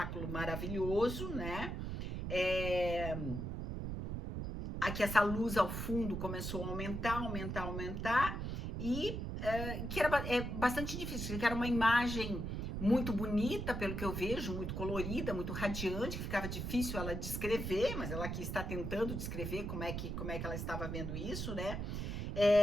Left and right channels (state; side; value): noise; right; rumble, 4 dB below the sound